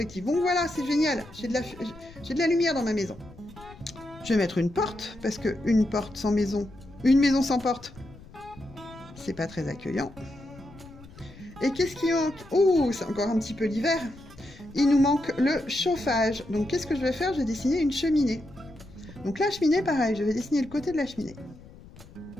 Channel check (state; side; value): noise; left; rumble, 20 dB below the sound